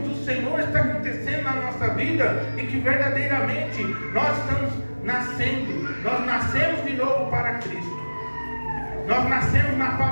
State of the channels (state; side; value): inverted; both; correlation -1.00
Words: do Senhor está acontecendo na nossa vida e que verdadeiramente nós estamos nascendo. Nós nascemos de novo para Cristo. Nós nascemos na